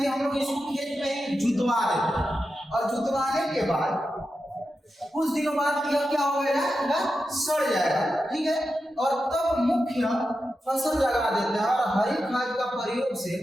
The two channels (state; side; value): normal; both; correlation 0.90